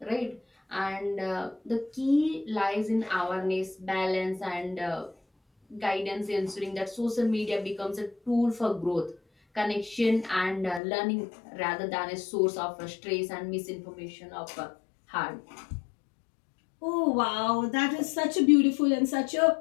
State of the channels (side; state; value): right; drops out; at 10.8 s